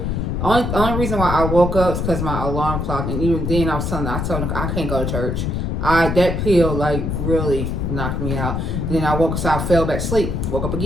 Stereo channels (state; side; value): noise; left; rumble, 1 dB below the sound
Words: Only reason why I woke up is because my alarm clock, and even then I told her I can't go to church. That pill like really knocked me out. Then I woke up, so I fell back to sleep. Woke up